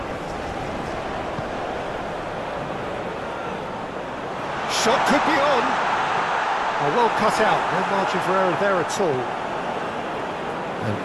Shot could be on. Oh, well cut out, no margin for error there at all. And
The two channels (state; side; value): identical; both; correlation 1.00